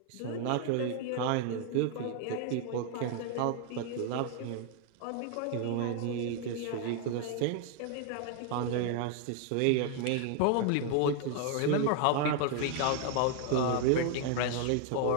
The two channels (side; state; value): both; different; correlation 0.00